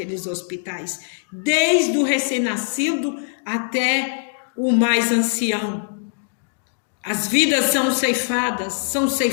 hospitais, desde o recém-nascido até o mais ancião. As vidas são ceifadas,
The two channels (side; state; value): right; silent; digital silence